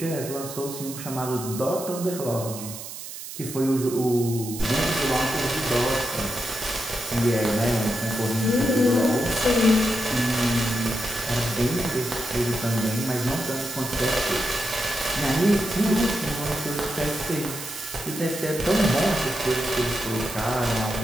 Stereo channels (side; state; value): right; noise; hiss, 10 dB below the sound